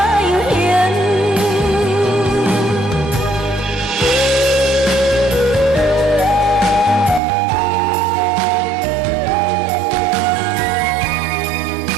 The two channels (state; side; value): drops out; left; at 7.2 s